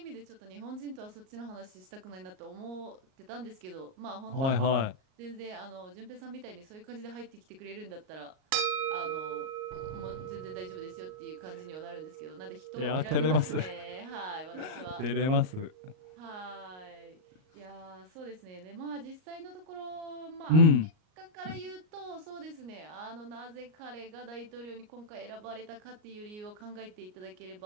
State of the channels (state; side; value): late; left; 38 ms